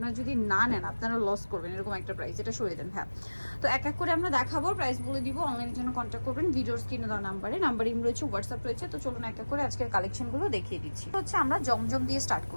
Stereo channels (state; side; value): inverted; both; correlation -1.00